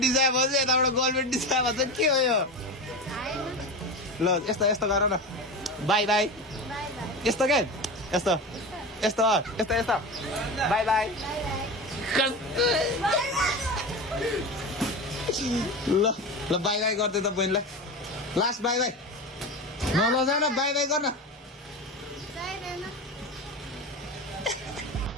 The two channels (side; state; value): both; normal; correlation 0.25